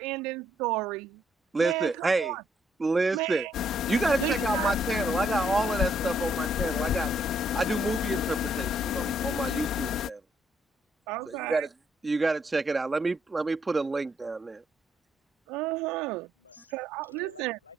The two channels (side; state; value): both; normal; correlation 0.71